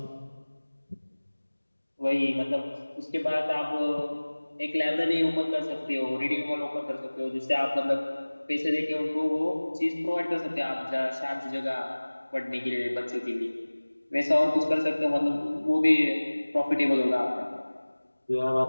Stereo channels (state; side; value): inverted; both; correlation -1.00